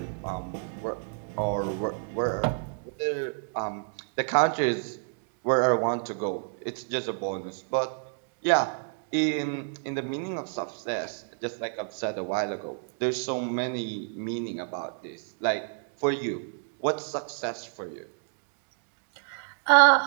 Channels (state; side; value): silent; left; 58 dB below the other